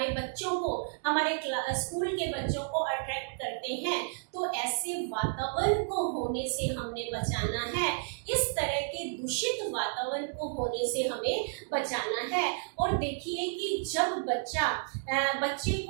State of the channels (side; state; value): left; silent; digital silence